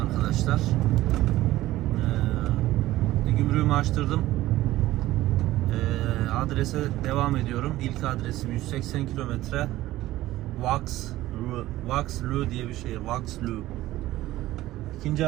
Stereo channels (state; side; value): quieter; left; 15.9 dB